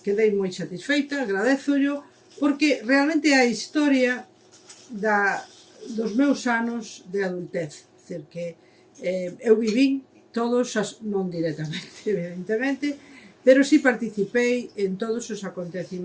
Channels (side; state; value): both; identical; correlation 1.00